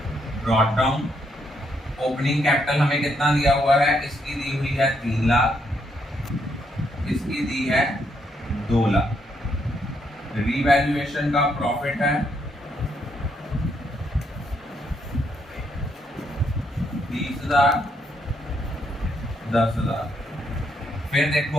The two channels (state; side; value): normal; both; correlation 0.75